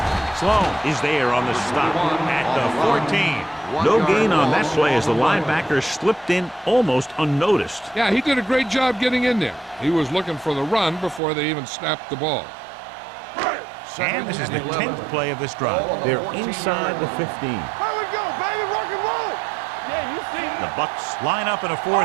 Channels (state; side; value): drops out; left; at 11.2 s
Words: Sloan is there on the stop at the 14. No gain on that play as the linebacker slipped in almost unnoticed. Yeah, he did a great job getting in there. He was looking for the run before they even snapped the ball. And this is the 10th play of this drive. They're inside the 15. Here we go, baby. Rock and roll. Yeah, you see. The Bucks line up in a